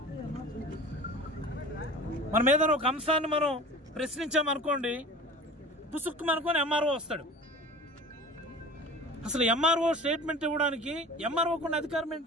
మనం ఏదైనా ఒక అంశాన్ని మనం ప్రశ్నించామనుకోండి, పుసుక్కు అనుకోని ఎంఆర్ఓ వస్తాడు. అసలు ఎంఆర్ఓ స్టేట్మెంట్ ఇవ్వడానికి ఎంఆర్ఓకు ఉన్న అధికారం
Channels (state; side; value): normal; both; correlation 0.40